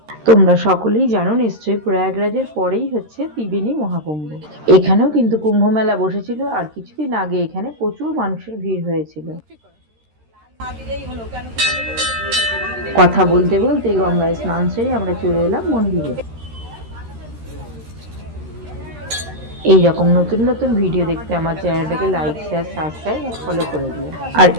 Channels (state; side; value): late; left; 13 ms